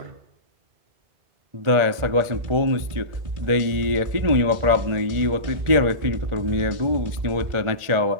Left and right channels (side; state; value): left; late; 1.4 ms